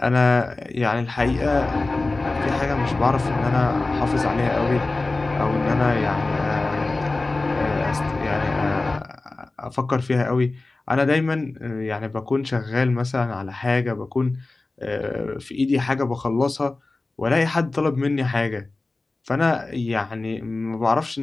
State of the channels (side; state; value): right; quieter; 3.3 dB